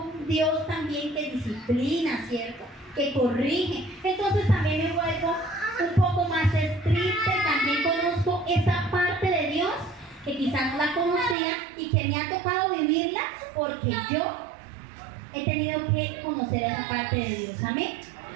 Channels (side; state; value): left; drops out; at 11.4 s